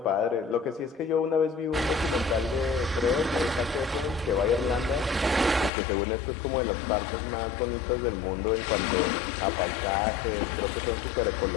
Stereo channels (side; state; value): right; drops out; at 5.7 s